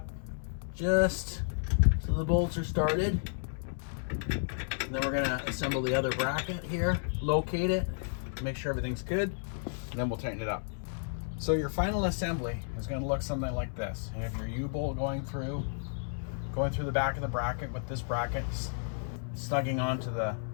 just so the bolts are started. And then we're going to assemble the other bracket here, locate it, make sure everything's good, and then we'll tighten it up. So your final assembly is going to look something like this. You have your U-bolt going through the back of the bracket with this bracket snugging onto the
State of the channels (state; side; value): silent; right; digital silence